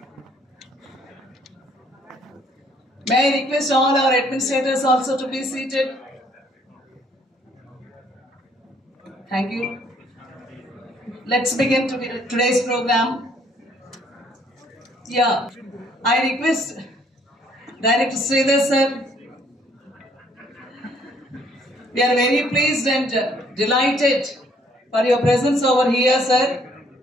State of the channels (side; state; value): both; normal; correlation 0.64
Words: May I request all our administrators also to be seated? Thank you. Let's begin today's program. Yeah, I request Director Sridhar sir. We are very pleased and delighted for your presence over here, sir.